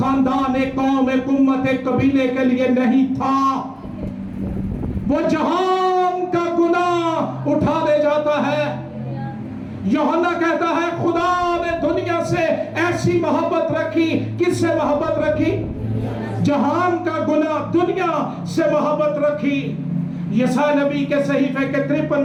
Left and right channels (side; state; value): both; identical; correlation 1.00